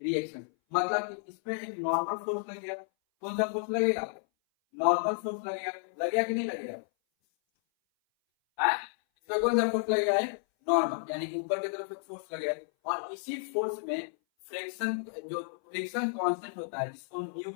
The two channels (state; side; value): silent; right; 57 dB below the other